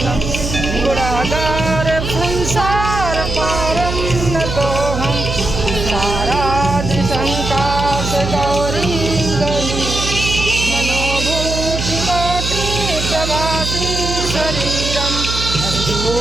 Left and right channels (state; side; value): noise; right; hum, 4 dB below the sound